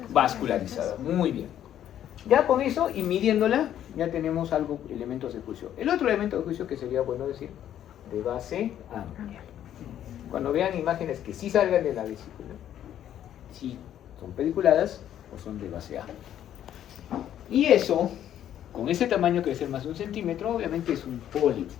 Vascularizada. Muy bien. Ya con eso y midiéndola, ya tenemos algo, elementos de juicio. El otro elemento de juicio que sería bueno decir, de base amplia. Cuando vean imágenes que sí salgan de la vesícula, si son pediculadas o son de base amplia. Y eso, con ese tamaño que debe ser más de 1 centímetro, obviamente es un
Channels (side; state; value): right; quieter; 10.9 dB